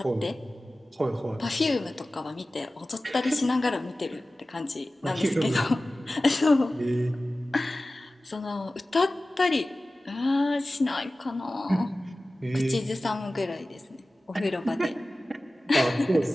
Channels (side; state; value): both; normal; correlation 0.96